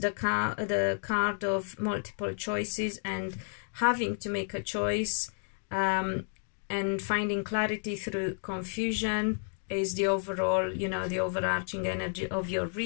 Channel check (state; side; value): silent; right; 57 dB below the other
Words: card of multiple choices and having to make a choice, and finding clarity through confusion is the overall, you know, the overarching energy of your